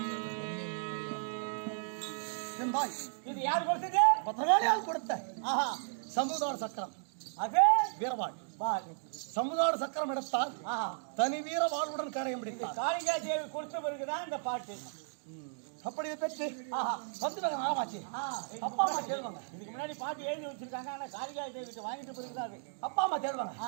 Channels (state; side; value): silent; left; digital silence